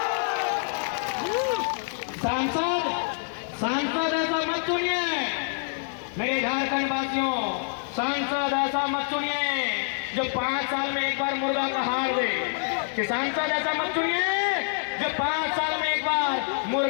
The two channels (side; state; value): right; silent; 61 dB below the other